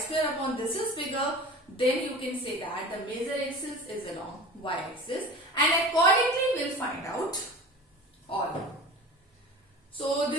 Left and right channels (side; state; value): both; normal; correlation 0.36